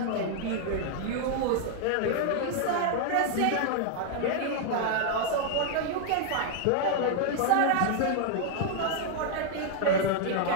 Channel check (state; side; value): different; both; correlation 0.00